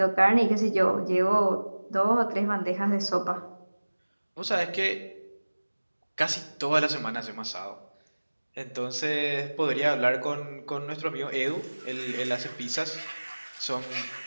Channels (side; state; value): both; inverted; correlation -1.00